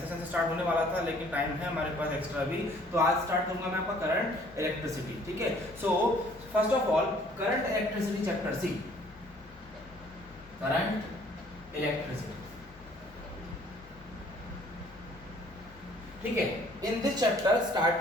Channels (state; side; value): normal; both; correlation 0.58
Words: सेशन से स्टार्ट होने वाला था लेकिन टाइम है हमारे पास एक्स्ट्रा भी, तो आज स्टार्ट करूंगा मैं आपका करंट इलेक्ट्रिसिटी, ठीक है। So first of all current electricity chapter C, current electricity, ठीक है। इन दिस चैप्टर